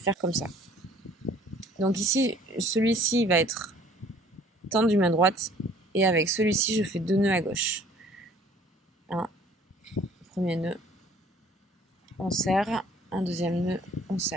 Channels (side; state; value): both; normal; correlation 0.55